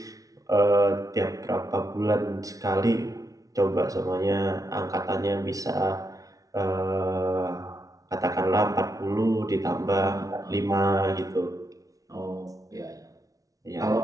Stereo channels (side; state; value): left; late; 0.17 ms